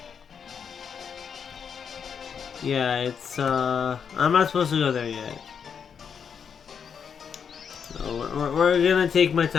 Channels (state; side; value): quieter; right; 7.0 dB